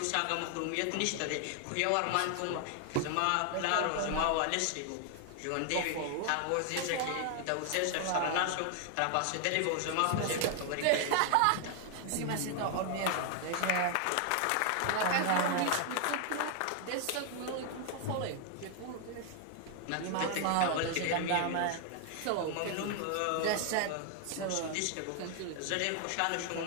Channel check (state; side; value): different; both; correlation 0.00